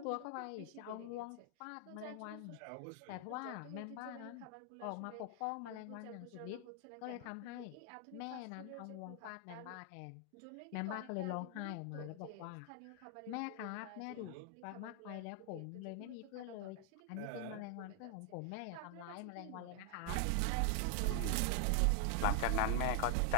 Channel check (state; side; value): different; both; correlation 0.00